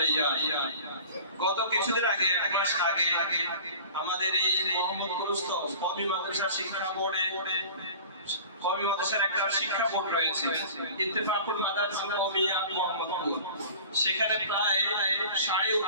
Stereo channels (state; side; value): inverted; both; correlation -0.41